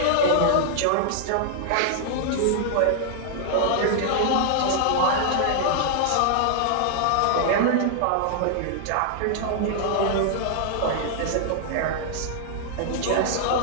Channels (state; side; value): different; both; correlation -0.01